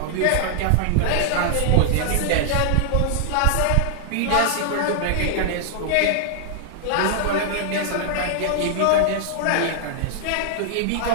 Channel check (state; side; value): different; both; correlation -0.01